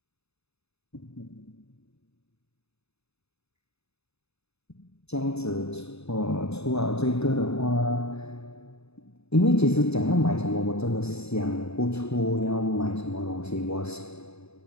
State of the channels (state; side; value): late; right; 0.79 ms